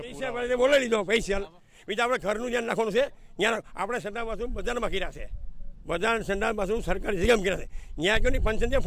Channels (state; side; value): identical; both; correlation 1.00